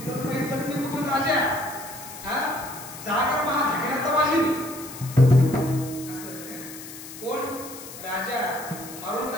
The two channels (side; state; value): left; noise; hiss, 13 dB below the sound